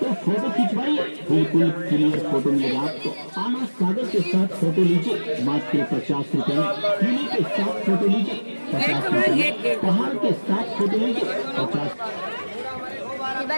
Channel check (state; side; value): inverted; both; correlation -1.00